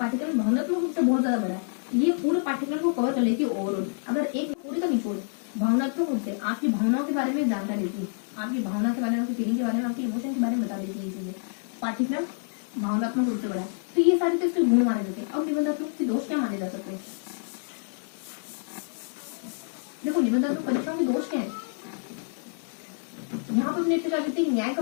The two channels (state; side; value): silent; right; digital silence